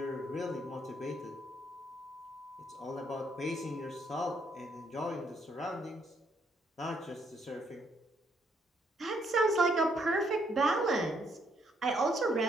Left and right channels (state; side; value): normal; both; correlation 0.71